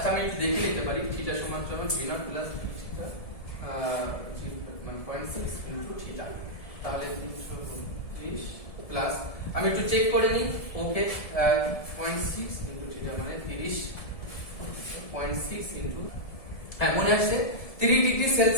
আমি একটু দেখে নিতে পারি। থিটা সমান সমান v0 প্লাস থিটা মানে 0.6 ইনটু থিটা, তাহলে 332 প্লাস, আমি একটু চেক করে নিই। ওকে, 0.6 ইনটু থিটা মানে 30.6 ইনটু, হ্যাঁ মনে আসছে। 30 ডিগ্রি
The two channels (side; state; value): right; late; 1.7 ms